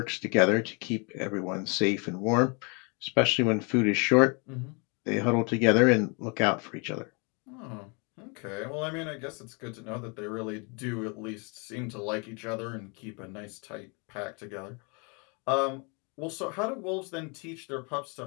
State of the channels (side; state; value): right; quieter; 32.7 dB